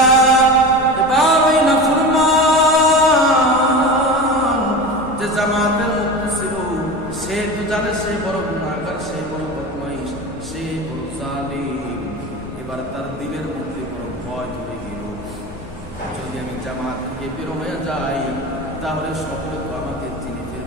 এবার ওই নাফরমান যে জামাতের মধ্যে ছিল, সে তো জানে সে বড় গুনাহগার, সে বড় বদমাইশ, সে বড় জালিম। এবার তার দিলের মধ্যে বড় ভয় ধরে গেল, যদি আমি জামাত থেকে বের হয়ে যাই তাহলে সকলে তো আমাকে চিনে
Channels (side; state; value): both; normal; correlation 0.29